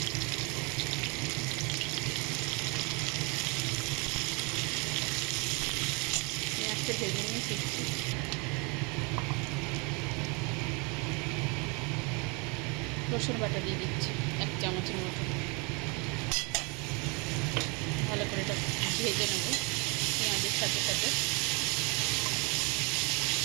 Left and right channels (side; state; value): left; quieter; 30.9 dB